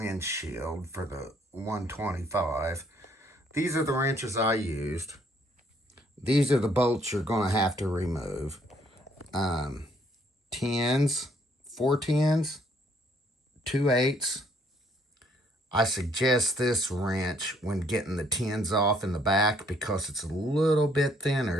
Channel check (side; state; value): both; normal; correlation 0.66